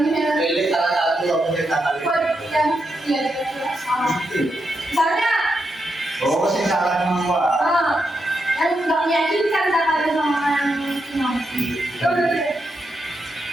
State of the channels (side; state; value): both; normal; correlation 0.84